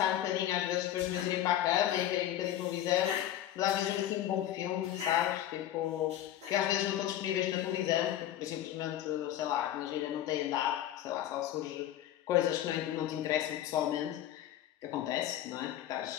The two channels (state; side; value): quieter; right; 12.2 dB